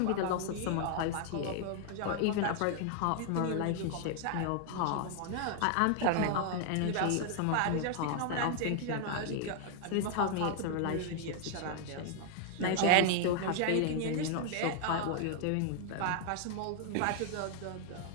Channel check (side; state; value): both; different; correlation 0.00